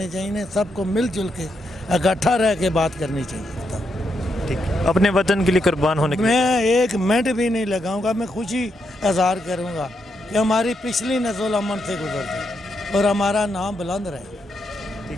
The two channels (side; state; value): both; normal; correlation 0.81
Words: چاہیے. سب کو مل جل کے اکٹھا رہ کے بات کرنی چاہیے. ٹھیک. اپنے وطن کے لیے قربان ہونے کے لیے میں ایک منٹ بھی نہیں لگاؤں گا. میں خوشی اظہار کروں گا کہ ہماری پچھلی نسل امن سے گزر جائے اور ہمارا نام بلند رہے.